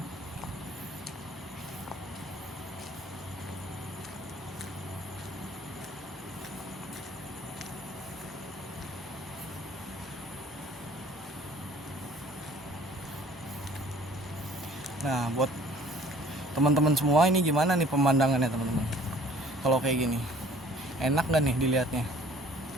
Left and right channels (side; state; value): both; normal; correlation 0.53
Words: Nah buat teman-teman semua ini gimana nih pemandangannya teman-teman? Kalau kayak gini enak gak nih dilihatnya?